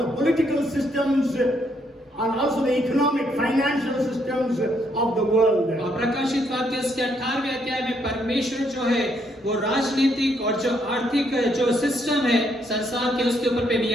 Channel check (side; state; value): both; normal; correlation 0.73